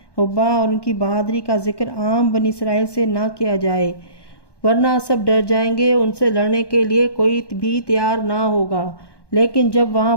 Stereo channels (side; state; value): right; late; 1.1 ms